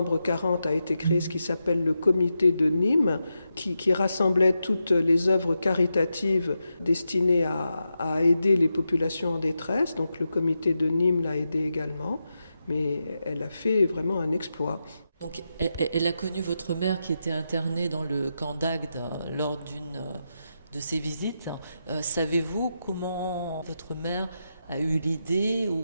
40, a été créé ce qui s'appelle le comité de Nîmes, qui rassemblait toutes les œuvres caritatives destinées à aider les populations en détresse. Donc le comité de Nîmes l'a aidé également. Mais elle a fait vraiment un exploit. Donc, elle a connu votre mère qui était internée dans le camp d'Agde lors d'une de ses visites. Savez-vous comment votre mère a eu l'idée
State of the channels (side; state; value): both; inverted; correlation -0.87